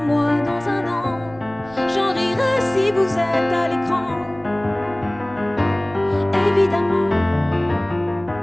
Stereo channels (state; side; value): noise; right; rumble, 22 dB below the sound